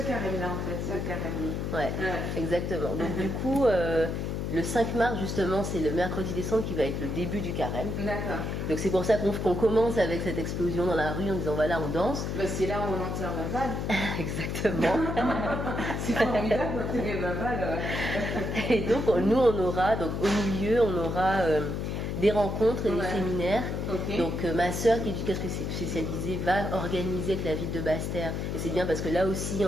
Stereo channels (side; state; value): left; noise; hum, 2 dB below the sound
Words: en fait, c'est le carême. Ouais, Ouais. exactement. Donc du coup, le 5 mars, justement, c'est le mercredi décembre qui va être le début du carême. D'accord. Donc c'est pour ça qu'on commence avec cette explosion dans la rue en disant voilà, on danse. Bah, c'est là où on enterre Baval. Exactement. C'est formidable d'enterrer Baval. Et donc nous, on aura, donc au milieu, on aura des rencontres et des Ouais. séminaires. Ok. Donc ma sœur qui est éducatrice spécialisée va organiser avec la ville de Basse-Terre. Et c'est bien parce que là aussi,